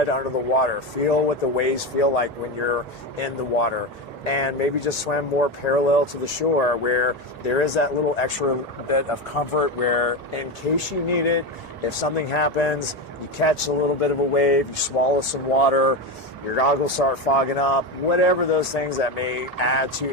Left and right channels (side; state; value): both; normal; correlation 0.17